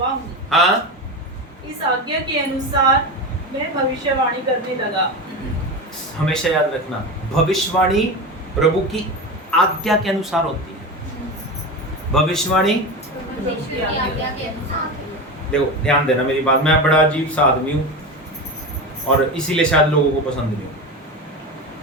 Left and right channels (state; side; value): normal; both; correlation 0.23